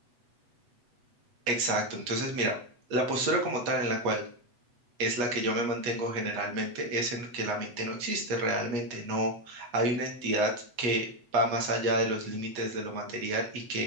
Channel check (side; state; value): left; late; 8.3 ms